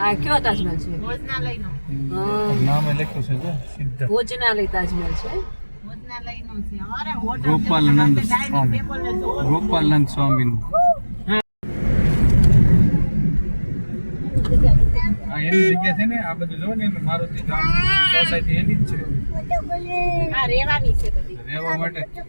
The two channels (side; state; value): both; inverted; correlation -1.00